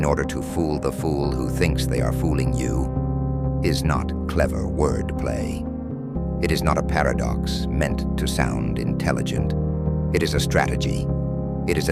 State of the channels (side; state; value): both; identical; correlation 1.00